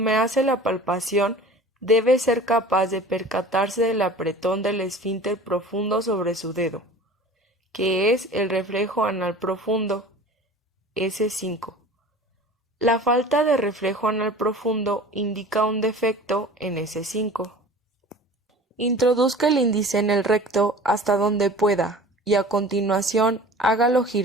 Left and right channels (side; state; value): both; normal; correlation 0.42